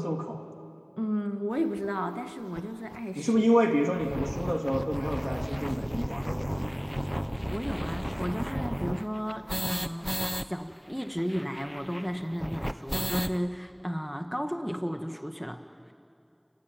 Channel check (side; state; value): both; identical; correlation 1.00